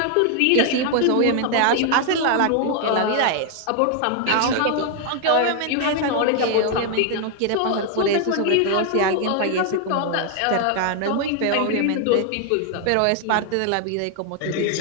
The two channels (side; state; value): both; different; correlation 0.00